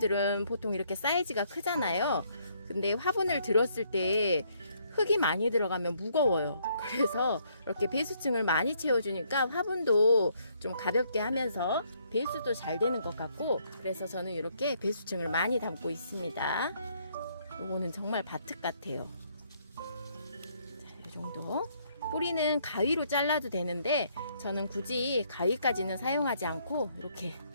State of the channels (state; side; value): inverted; both; correlation -0.69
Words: 보통 이렇게 사이즈가 크잖아요. 근데 화분을 들었을 때 흙이 많이 들어가면 무거워요. 그래서 이렇게 배수층을 많이 채워주니까 화분도 좀 가볍게 하면서 배수도 잘 되는 것 같고, 그래서 저는 이렇게 배수층을 많이 담고 있습니다. 이거는 정말 바특 같아요. 자, 이 정도. 뿌리는 가위로 잘라도 되는데 저는 굳이 가위까지는 사용하지 않고 이렇게